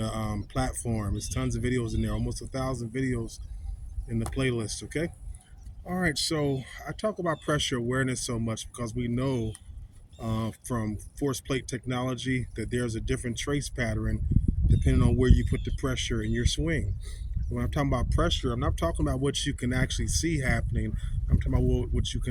platform. There's tons of videos in there, almost 1,000 videos in the playlist, okay? All right, so I talk about pressure awareness so much because we know from force plate technology that there's a different trace pattern depending on where you put the pressure in your swing. When I'm talking about pressure, I'm not talking about what you can actually see happening. I'm talking about what you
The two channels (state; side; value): identical; both; correlation 1.00